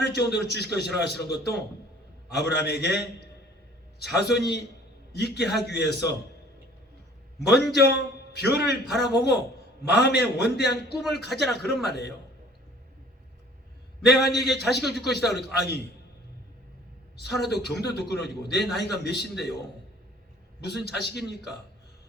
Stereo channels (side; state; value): both; normal; correlation 0.52